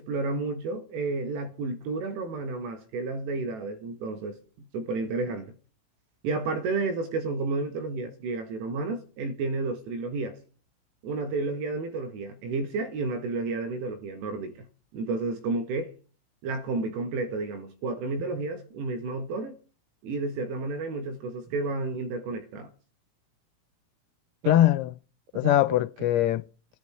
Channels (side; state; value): left; late; 18 ms